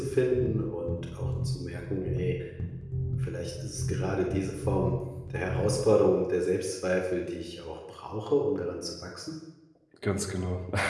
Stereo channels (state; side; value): identical; both; correlation 1.00